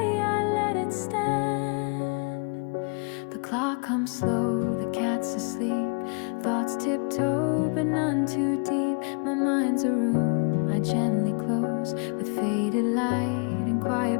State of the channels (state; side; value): quieter; right; 36.9 dB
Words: I let it stand. The clock hums slow, the cat's asleep, thoughts tiptoe but none too deep. My mind's a room I gently close, with faded light and